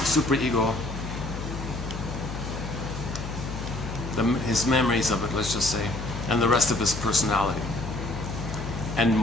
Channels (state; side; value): noise; left; hum, 7 dB below the sound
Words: superego, his memories of it, let's just say, and the rest of his personality, and